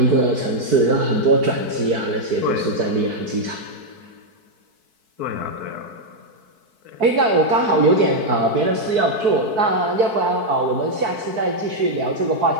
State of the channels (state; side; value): late; left; 4.6 ms